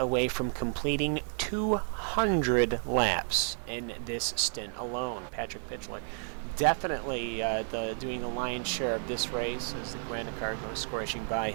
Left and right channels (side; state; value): left; silent; 57 dB below the other